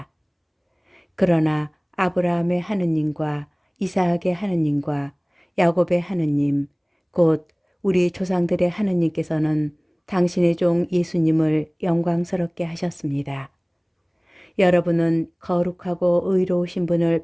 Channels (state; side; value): identical; both; correlation 1.00